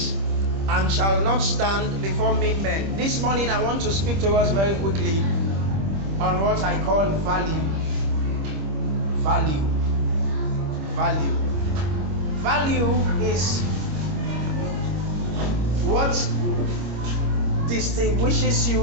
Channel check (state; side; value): late; left; 25 ms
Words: and shall not stand before mean men. This morning I want to speak to us very quickly on what I call value. Value. Value. Value is what distinguishes